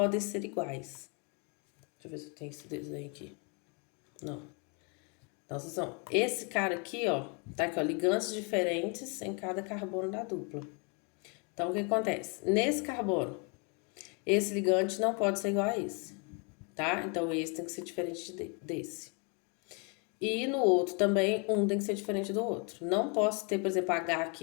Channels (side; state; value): right; quieter; 34.8 dB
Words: ser iguais. Deixa eu ver se eu tenho esse desenho aqui. Não. Então, esse cara aqui, ó, tá aqui, ó, ligantes diferentes em cada carbono da dupla. Então, o que acontece? Nesse carbono, esse ligante não pode ser igual a esse, tá? Então, esse tem que ser diferente desse. E no outro também, um tem que ser diferente do outro. Não posso ter, por exemplo, H